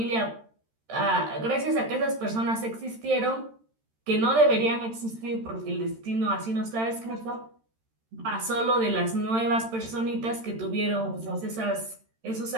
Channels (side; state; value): left; late; 13 ms